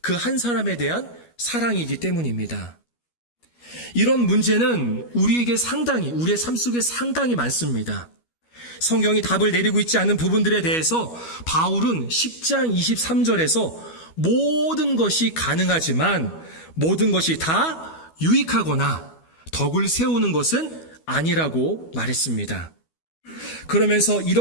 그 한 사람에 대한 사랑이기 때문입니다. 이런 문제는 우리에게 우리의 삶 속에 상당히 많습니다. 성경이 답을 내리고 있지 않은 부분들에 대해서 바울은 10장 23절에서 모든 것이 가능하지만 모든 것이 다 유익하거나 덕을 세우는 것은 아니라고 말했습니다. 그러면서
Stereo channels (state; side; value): late; right; 12 ms